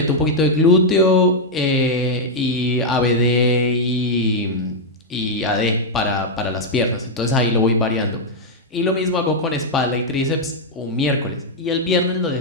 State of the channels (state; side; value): normal; both; correlation -0.02